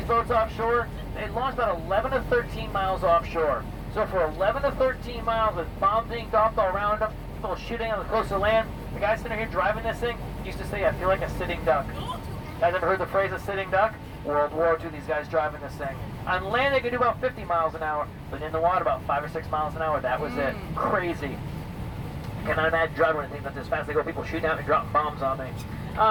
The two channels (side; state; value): both; identical; correlation 1.00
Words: boats offshore, they launched about 11 to 13 miles offshore. So for 11 to 13 miles with bombs being dropped all around them, people shooting on the coastal land, the guy sitting here driving this thing used to say, I feel like a sitting duck. Guys ever heard the phrase a sitting duck? World War II, these guys driving this thing. On land, they could do about 50 miles an hour, but in the water, about 5 or 6 miles an hour. That was it. Crazy. I cannot imagine driving anything that's as fast as they go. People shooting out and dropping bombs on me.